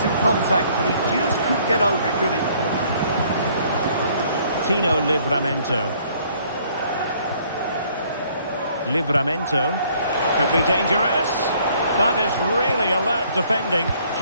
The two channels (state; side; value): inverted; both; correlation -0.61